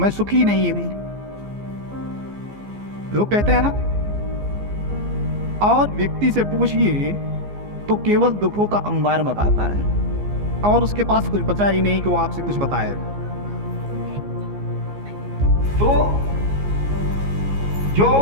सुखी नहीं हूं, लोग कहते हैं ना। और व्यक्ति से पूछिए तो केवल दुखों का अंबार बताता है और उसके पास कुछ बचा ही नहीं कि वो आपसे कुछ बताए। तो जो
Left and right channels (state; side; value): late; left; 15 ms